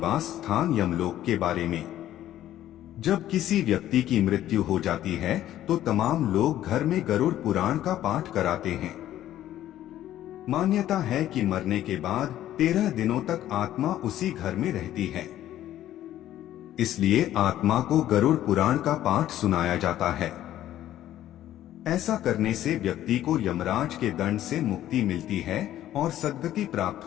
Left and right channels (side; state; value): right; quieter; 12.7 dB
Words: स्थान यमलोक के बारे में। जब किसी व्यक्ति की मृत्यु हो जाती है तो तमाम लोग घर में गरुड़ पुराण का पाठ कराते हैं। मान्यता है कि मरने के बाद 13 दिनों तक आत्मा उसी घर में रहती है, इसलिए आत्मा को गरुड़ पुराण का पाठ सुनाया जाता है। ऐसा करने से व्यक्ति को यमराज के दंड से मुक्ति मिलती है और सद्गति